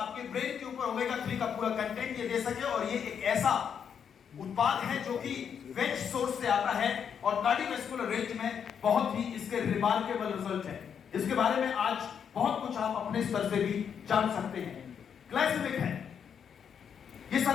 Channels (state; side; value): quieter; right; 7.6 dB